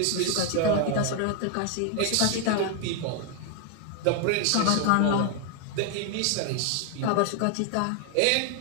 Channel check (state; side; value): different; both; correlation 0.00